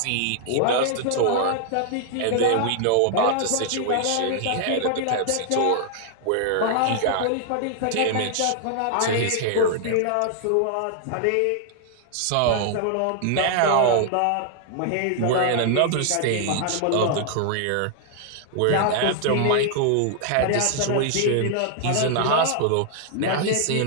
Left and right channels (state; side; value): different; both; correlation -0.01